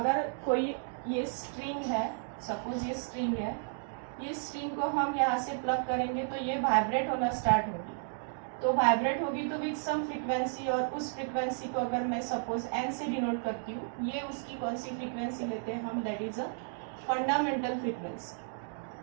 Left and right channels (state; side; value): silent; left; digital silence